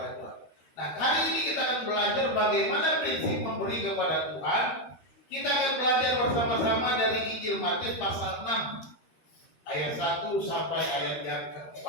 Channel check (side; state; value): right; late; 13 ms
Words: Tuhan. Nah, kali ini kita akan belajar bagaimana prinsip memberi kepada Tuhan. Kita akan belajar bersama-sama dari Injil Matius pasal 6. Ayat 1 sampai ayat yang